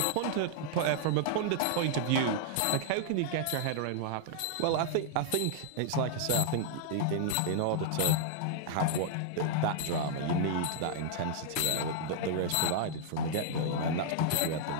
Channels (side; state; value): both; different; correlation -0.01